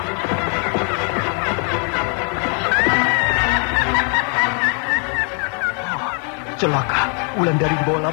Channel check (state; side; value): quieter; right; 39.7 dB